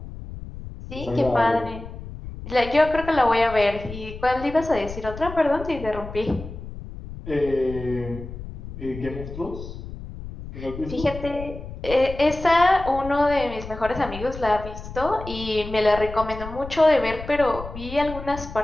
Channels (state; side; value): noise; left; rumble, 11 dB below the sound